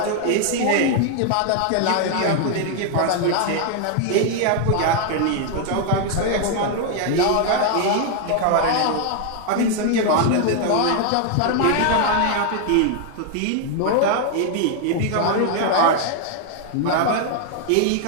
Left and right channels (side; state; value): both; different; correlation 0.00